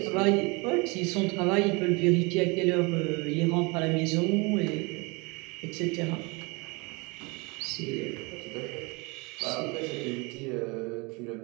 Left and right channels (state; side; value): quieter; left; 27.9 dB